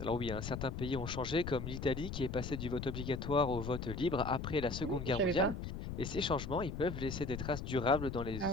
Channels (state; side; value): noise; left; rumble, 6 dB below the sound